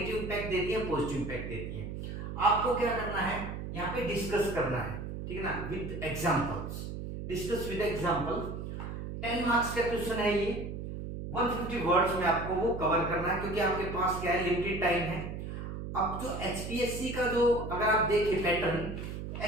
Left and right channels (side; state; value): right; noise; hum, 6 dB below the sound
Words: इंपैक्ट देती है, पॉजिटिव इंपैक्ट देती है। आपको क्या करना है, यहाँ पे डिस्कस करना है, ठीक है ना, with examples. Discuss with example. 10 marks का क्वेश्चन है ये, 150 वर्ड्स में आपको वो कवर करना है, क्योंकि आपके पास क्या है, लिमिटेड टाइम है। अब जो एचपीएससी का जो अगर आप देखें पैटर्न,